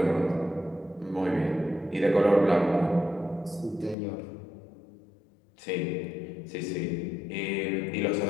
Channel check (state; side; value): drops out; right; at 4.0 s